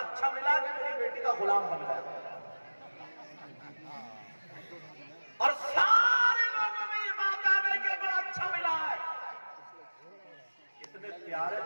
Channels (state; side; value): inverted; both; correlation -1.00